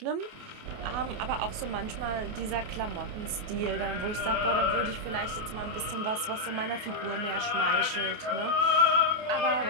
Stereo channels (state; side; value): late; left; 28 ms